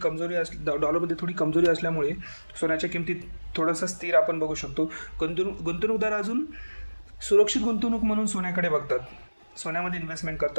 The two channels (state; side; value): inverted; both; correlation -1.00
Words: डॉलरमध्ये थोडी कमजोरी असल्यामुळे सोन्याच्या किमतीत थोडंसं स्थिर आपण बघू शकतो. गुंतवणूकदार अजून सुरक्षित गुंतवणूक म्हणून सोन्याकडे बघतात, सोन्यामध्ये इन्व्हेस्टमेंट